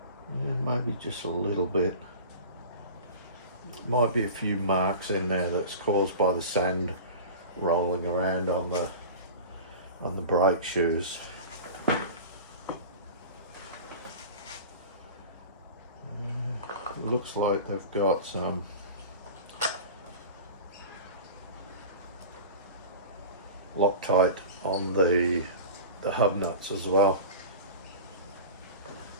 Yeah, maybe just a little bit. Might be a few marks in there that's caused by the sand rolling around on the brake shoes. Looks like they've got some Loctite on the hub nuts as well.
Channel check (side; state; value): both; inverted; correlation -0.34